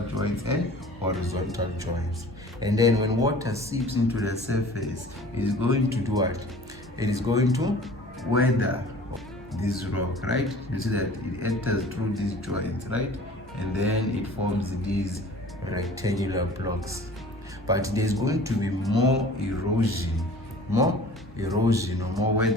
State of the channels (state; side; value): normal; both; correlation 0.46